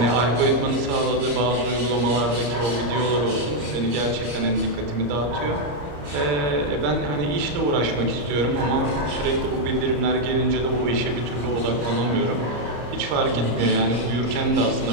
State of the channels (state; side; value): late; left; 34 ms